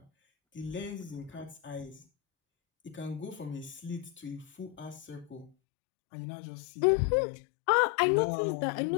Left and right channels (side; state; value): right; drops out; at 5.5 s